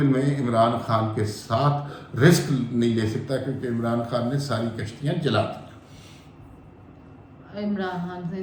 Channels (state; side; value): identical; both; correlation 1.00